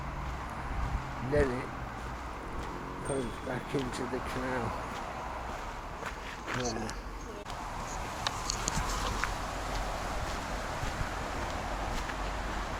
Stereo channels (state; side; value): identical; both; correlation 1.00